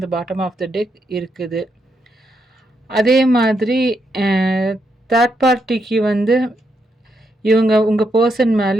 பாட்டம் ஆஃப் த டெக் இருக்குது. அதே மாதிரி அ தேர்ட் பார்ட்டிக்கு வந்து இவங்க உங்க பெர்சன்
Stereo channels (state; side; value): normal; both; correlation 0.80